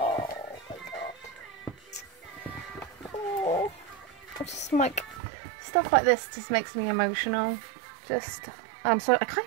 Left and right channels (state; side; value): drops out; left; at 5.2 s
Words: my god. Oh, just like stuff like this just makes me emotional. I'm sorry, I can't